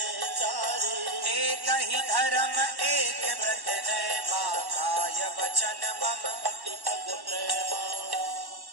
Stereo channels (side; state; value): left; late; 1.1 ms